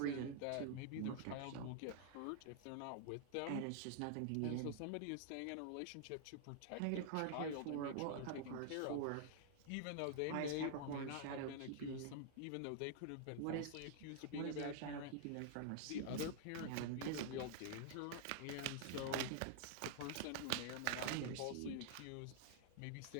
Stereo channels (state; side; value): different; both; correlation -0.01